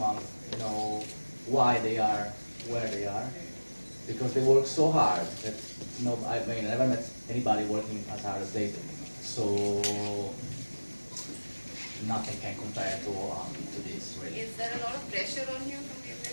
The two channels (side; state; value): both; inverted; correlation -1.00